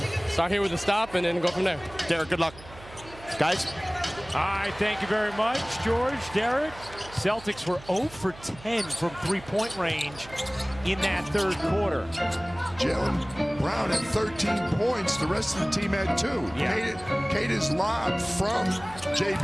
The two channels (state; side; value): noise; right; hum, 18 dB below the sound